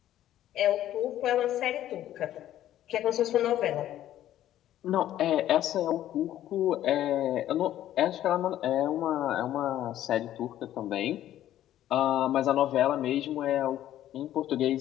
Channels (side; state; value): right; quieter; 12.5 dB